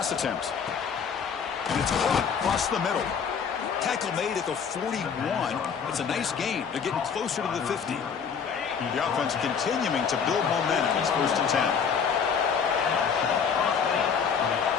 attempt. And it's caught across the middle. Tackle made at the 41. It's a nice gain. They're getting closer to the 50. The offense continuing to build momentum. It's 1st and 10.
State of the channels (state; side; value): quieter; right; 6.6 dB